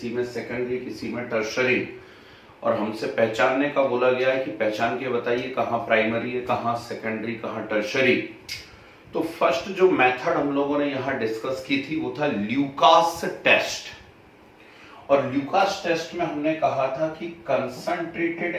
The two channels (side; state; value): both; identical; correlation 1.00